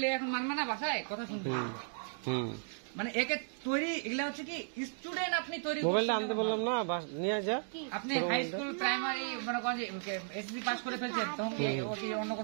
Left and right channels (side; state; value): left; silent; digital silence